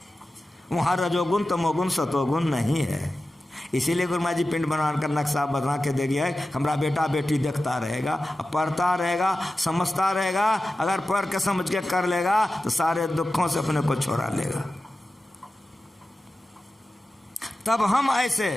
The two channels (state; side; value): normal; both; correlation 0.94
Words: वहाँ रजोगुण तमोगुण सतोगुण नहीं है। इसीलिए गुरु महाराज जी पिंड बनाकर नक्शा बना के दे गया है। हमारा बेटा बेटी देखता रहेगा, पढ़ता रहेगा, समझता रहेगा। अगर पढ़ के समझ के कर लेगा तो सारे दुखों से अपने को छोड़ा लेगा। तब हम ऐसे,